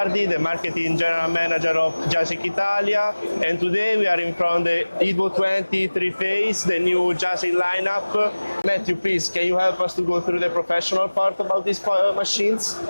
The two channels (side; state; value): both; inverted; correlation -1.00